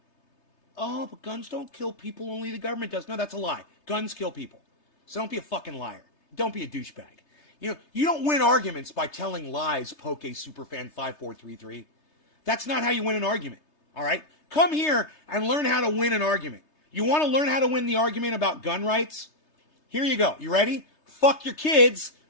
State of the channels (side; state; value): right; late; 3.3 ms